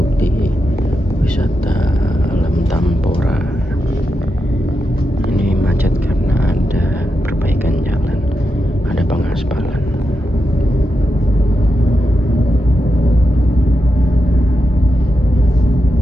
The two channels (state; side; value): normal; both; correlation 0.87